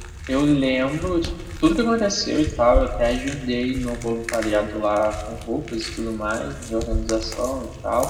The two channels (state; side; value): identical; both; correlation 1.00